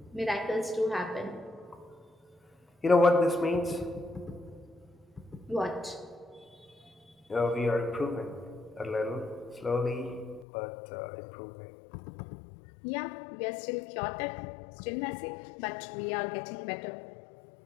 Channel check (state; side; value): drops out; right; at 10.5 s